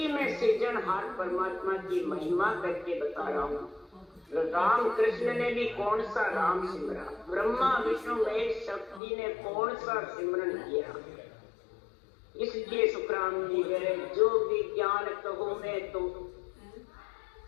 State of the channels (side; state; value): right; drops out; at 9.0 s